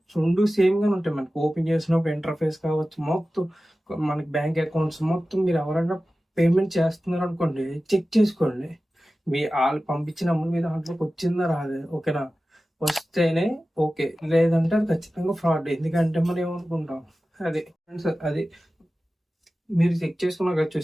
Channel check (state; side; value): normal; both; correlation 0.95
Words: 2 సేమ్గానే ఉంటాయి. మనకి ఓపెన్ చేసినప్పుడు ఇంటర్ఫేస్ కావచ్చు, మొత్తం మనకి బ్యాంక్ అకౌంట్స్ మొత్తం మీరు ఎవరైనా పేమెంట్ చేస్తున్నారు అనుకోండి, చెక్ చేసుకోండి. మీ వాళ్ళు పంపించిన అమౌంట్ మీద దాంట్లోకి వచ్చిందా రాదే. ఓకేనా, వస్తేనే ఓకే, లేదంటే అది ఖచ్చితంగా ఫ్రాడ్. ఎందుకంటే మనం ఏమనుకుంటాం, అది ఫ్రెండ్స్, అది మీరు చెక్ చేసుకున్నారు కదా,